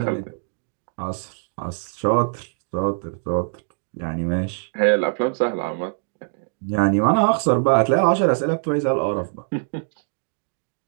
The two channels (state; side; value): silent; left; 63 dB below the other